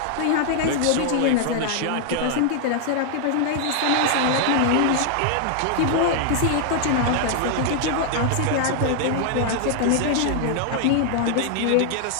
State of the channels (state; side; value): different; both; correlation 0.00